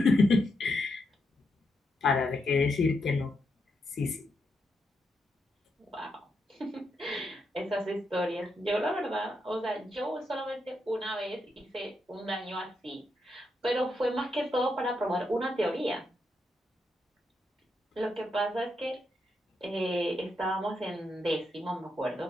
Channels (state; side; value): normal; both; correlation 0.82